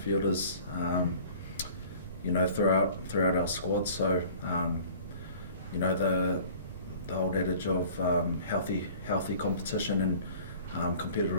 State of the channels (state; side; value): inverted; both; correlation -0.48